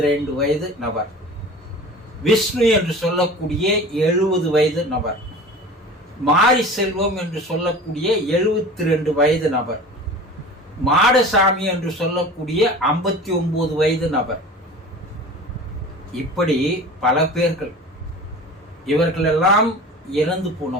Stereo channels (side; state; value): both; normal; correlation 0.38